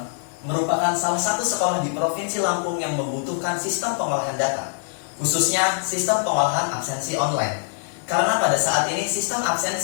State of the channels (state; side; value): silent; right; 60 dB below the other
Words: merupakan salah satu sekolah di Provinsi Lampung yang membutuhkan sistem pengolahan data, khususnya sistem pengolahan absensi online. Karena pada saat ini sistem